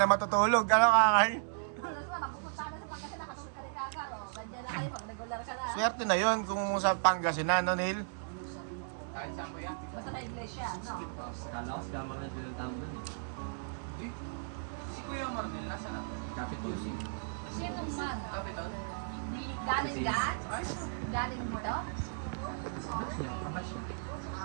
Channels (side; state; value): left; silent; digital silence